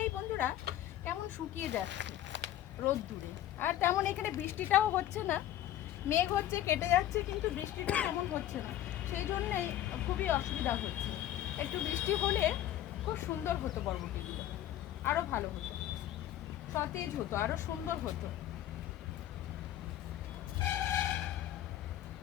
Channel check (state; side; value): quieter; right; 12.7 dB